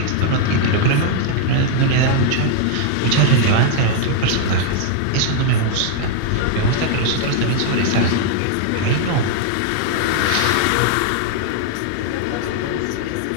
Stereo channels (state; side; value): different; both; correlation 0.00